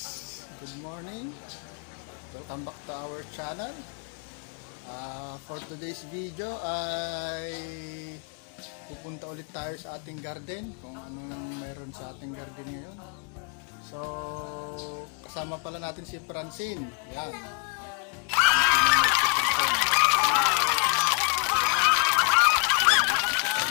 Good morning. Welcome back to our channel. For today's video ay pupunta ulit tayo sa ating garden, kung anong meron sa ating garden ngayon. So, kasama pala natin si Francine. Yan.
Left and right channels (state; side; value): quieter; right; 35.7 dB